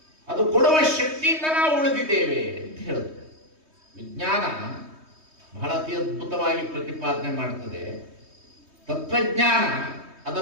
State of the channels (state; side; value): late; left; 3.2 ms